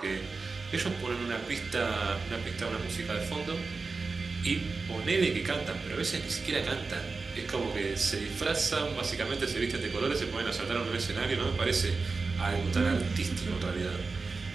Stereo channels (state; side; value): quieter; left; 4.2 dB